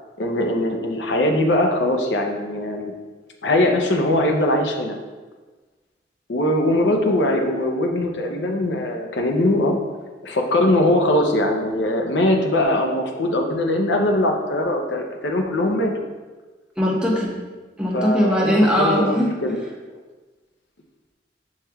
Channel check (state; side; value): normal; both; correlation 0.39